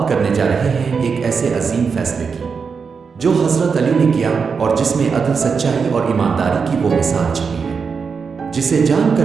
کرنے جا رہے ہیں ایک ایسے عظیم فیصلے کی جو حضرت علی نے کیا اور جس میں عدل، سچائی اور ایمانداری کی وہ مثال چھپی ہے جسے جان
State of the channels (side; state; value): left; quieter; 5.6 dB